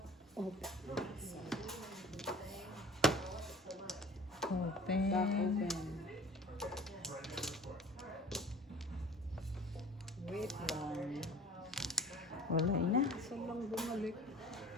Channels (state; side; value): normal; both; correlation 0.46